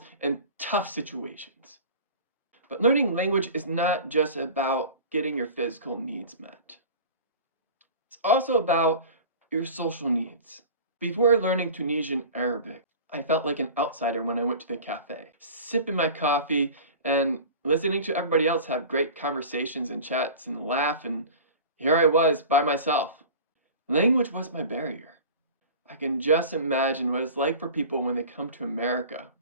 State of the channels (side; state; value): both; inverted; correlation -0.38